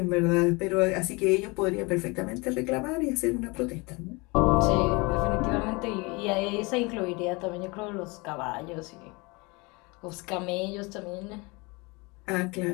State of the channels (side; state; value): right; quieter; 26.7 dB